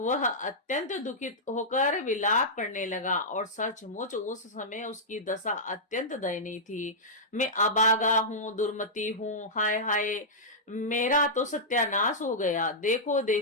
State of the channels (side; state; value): both; normal; correlation -0.10